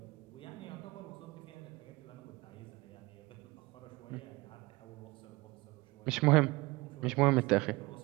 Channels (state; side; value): quieter; left; 22.6 dB